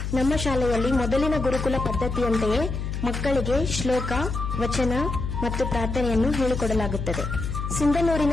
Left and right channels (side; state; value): left; noise; hum, 4 dB below the sound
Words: ನಮ್ಮ ಶಾಲೆಯಲ್ಲಿ ಮೊದಲಿನ ಗುರುಕುಲ ಪದ್ಧತಿಯಂತೆಯೇ ಮಕ್ಕಳಿಗೆ ಶ್ಲೋಕ, ವಚನ ಮತ್ತು ಪ್ರಾರ್ಥನೆಯನ್ನು ಹೇಳಿಕೊಡಲಾಗುತ್ತದೆ.